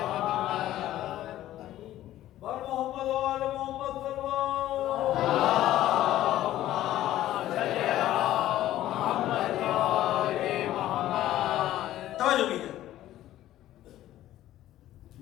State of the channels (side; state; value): right; quieter; 13.8 dB